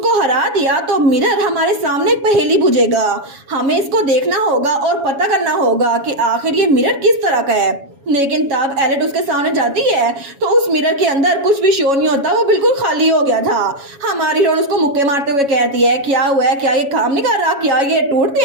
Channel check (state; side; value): late; left; 7.2 ms